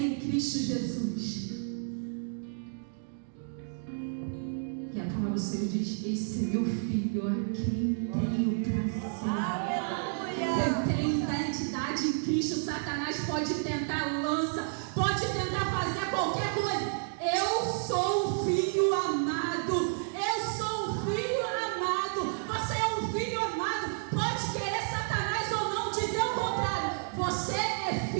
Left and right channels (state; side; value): silent; left; digital silence